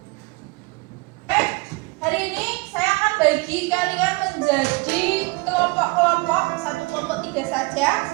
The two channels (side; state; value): left; quieter; 26.0 dB